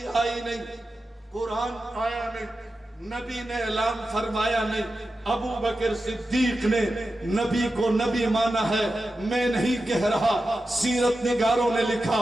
آئی نہیں، قرآن آیا نہیں، نبی نے اعلان فرمایا نہیں۔ ابو بکر صدیق نے نبی کو نبی مانا ہے، میں نہیں کہہ رہا، سیرت نگاروں نے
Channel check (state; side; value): normal; both; correlation 0.91